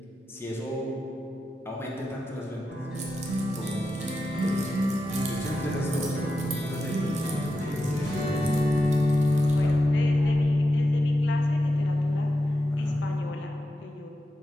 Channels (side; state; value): both; normal; correlation 0.89